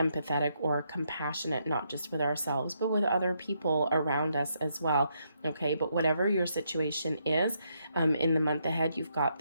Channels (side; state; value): both; inverted; correlation -0.76